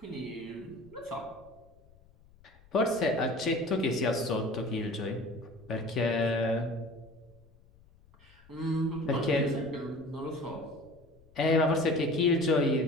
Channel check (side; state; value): left; noise; rumble, 27 dB below the sound